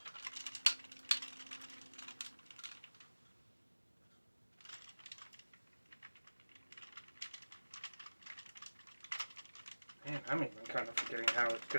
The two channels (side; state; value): both; inverted; correlation -1.00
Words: Man, I'm even kind of forgetting how it